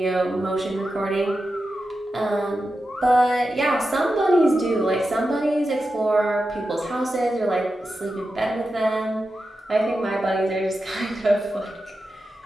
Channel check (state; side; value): normal; both; correlation 0.91